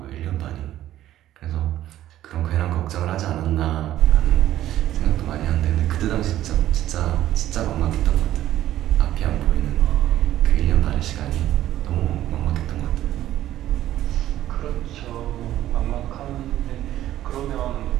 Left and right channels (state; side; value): quieter; left; 13.2 dB